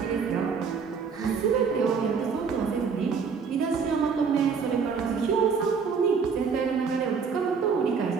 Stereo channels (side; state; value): left; quieter; 5.8 dB